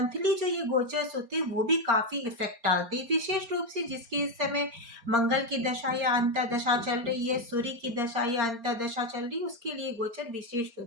जो ये गोचर्स होते हैं वो भी काफी इफेक्ट डालते हैं, विशेष रूप से जिसकी इस समय मंगल की दशा या अंतर्दशा चल रही है, सूर्य की दशा या अंतर्दशा चल रही है, उसके लिए गोचर विशेष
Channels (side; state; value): left; late; 4.3 ms